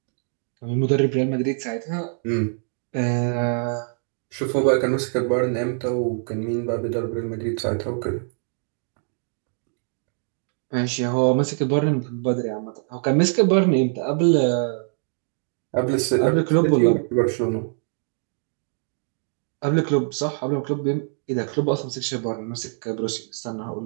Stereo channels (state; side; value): silent; left; 59 dB below the other